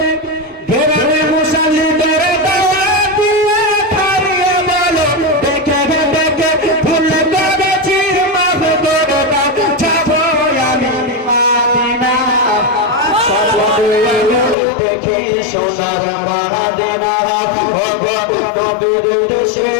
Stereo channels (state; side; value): drops out; right; at 14.6 s